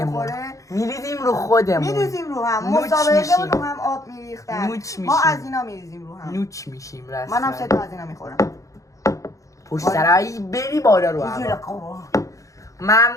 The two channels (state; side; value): late; right; 0.16 ms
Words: بخوره، میریزیم رو خودمون میریزیم رو هم نوچ مسابقه میشیم. رو هم آب میریختن نوچ ما میشیم. از اینا میریزیم رو هم نوچ میشیم رسما منم 3 تا از اینا میخورم پشت سرایی بری بالا رو هوا.